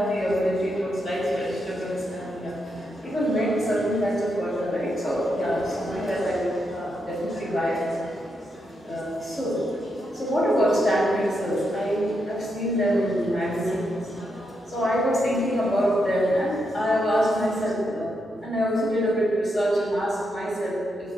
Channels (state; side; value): normal; both; correlation 0.82